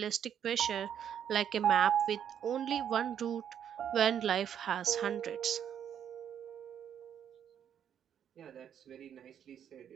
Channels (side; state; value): left; quieter; 9.1 dB